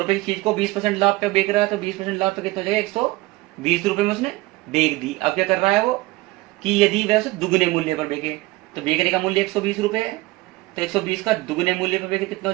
रुपए की चीज को 20% लाभ पे बेच रहा है, तो 20% लाभ पे कितना हो जाएगा 120 रुपए में उसने बेच दी। अब क्या कर रहा है वो कि यदि वह उसे दुगने मूल्य पर बेचे, तो बेचने का मूल्य 120 रुपए है, तो 120 का दुगने मूल्य पर बेचे कितना हो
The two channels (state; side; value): quieter; left; 20.4 dB